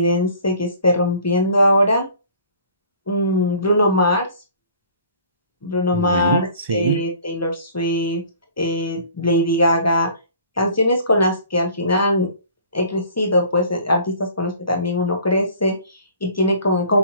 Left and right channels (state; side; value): inverted; both; correlation -0.50